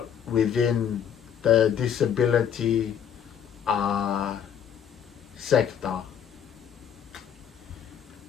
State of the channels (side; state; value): right; quieter; 8.6 dB